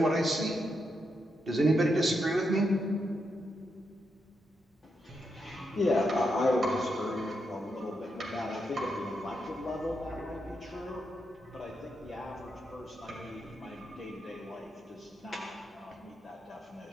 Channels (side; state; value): both; normal; correlation 0.83